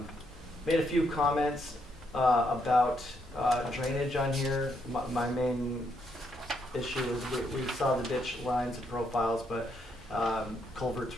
Made a few comments about drainage on here. My main issue is we saw the ditch lines and profiles, but culverts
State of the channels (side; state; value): both; normal; correlation 0.76